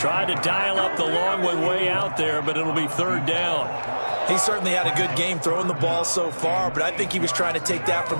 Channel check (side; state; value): both; inverted; correlation -1.00